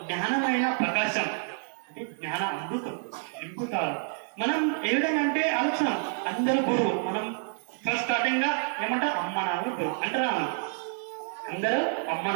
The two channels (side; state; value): left; silent; 59 dB below the other